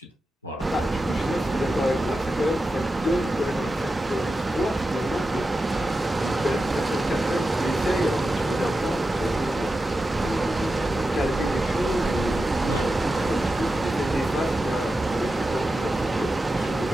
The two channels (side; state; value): both; normal; correlation 0.91